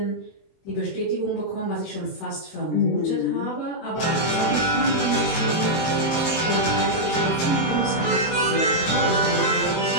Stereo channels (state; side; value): late; right; 23 ms